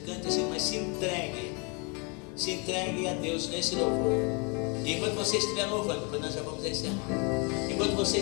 cante esse hino, mas se entregue a Deus nesse louvor. E enquanto você estiver louvando, depois nós já vamos encerrar. Enquanto você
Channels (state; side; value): quieter; right; 32.9 dB